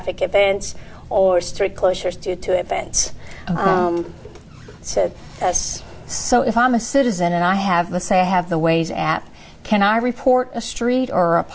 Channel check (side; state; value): both; identical; correlation 1.00